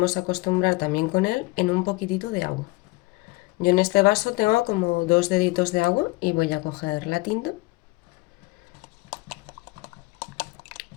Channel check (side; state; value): right; quieter; 22.9 dB